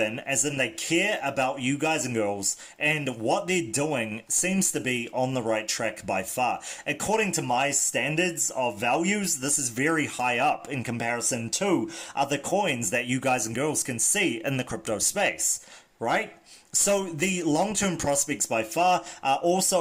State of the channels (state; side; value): identical; both; correlation 1.00